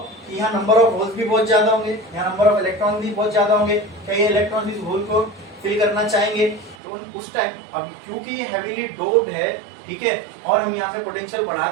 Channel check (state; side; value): drops out; left; at 6.8 s